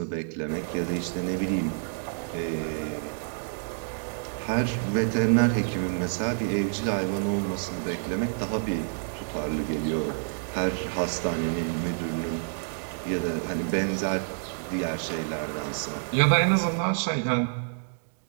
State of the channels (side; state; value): left; silent; digital silence